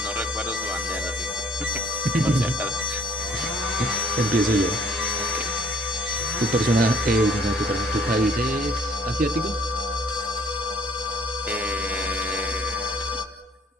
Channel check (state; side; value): normal; both; correlation 0.59